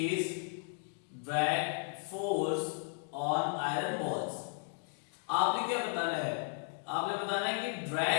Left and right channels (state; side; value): silent; right; 55 dB below the other